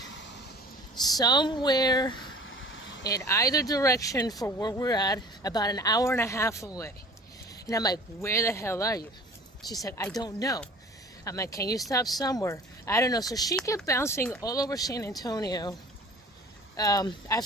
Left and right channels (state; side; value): normal; both; correlation 0.45